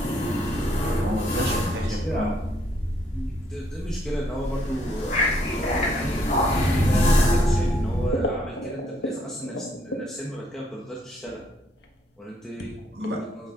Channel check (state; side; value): normal; both; correlation 0.70